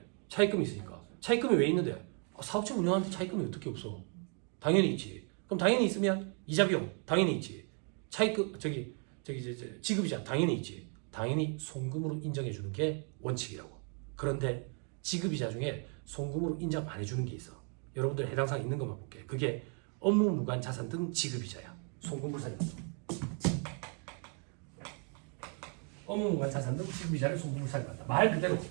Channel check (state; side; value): quieter; left; 39.8 dB